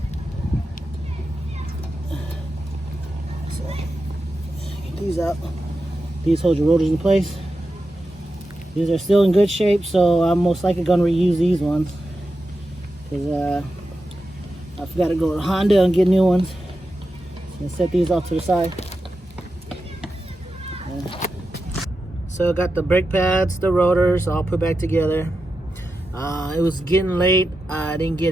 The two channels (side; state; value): both; normal; correlation 0.90